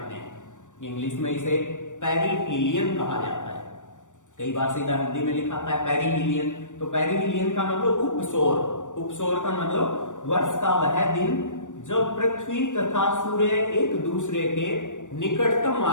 हैं। इंग्लिश में इसे पेरिहीलियन कहा जाता है। कई बार सीधा हिंदी में लिखा था पेरिहीलियन, तो पेरिहीलियन का मतलब उपसौर। उपसौर का मतलब वर्ष का वह दिन जब पृथ्वी तथा सूर्य एक दूसरे के निकटतम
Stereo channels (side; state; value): right; late; 0.86 ms